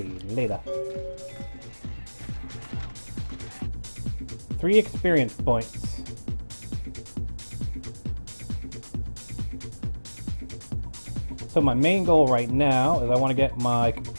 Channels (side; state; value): both; inverted; correlation -1.00